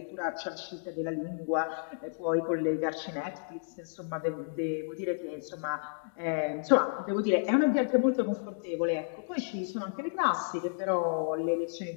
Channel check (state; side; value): silent; right; digital silence